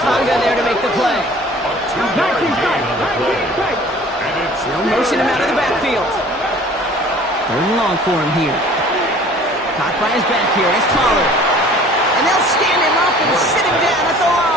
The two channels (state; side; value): normal; both; correlation 0.49